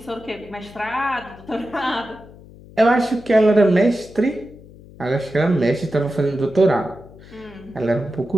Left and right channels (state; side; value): noise; left; hum, 21 dB below the sound